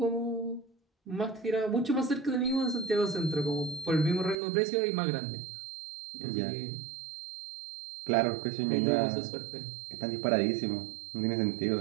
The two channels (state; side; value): drops out; left; at 4.4 s